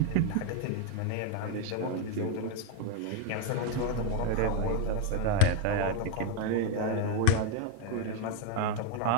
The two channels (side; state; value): both; different; correlation 0.00